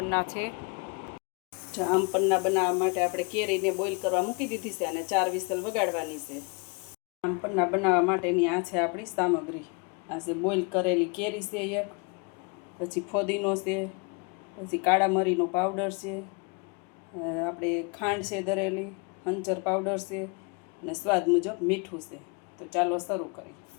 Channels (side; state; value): right; quieter; 32.1 dB